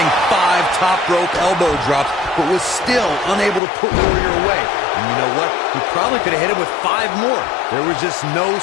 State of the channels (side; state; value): right; drops out; at 3.6 s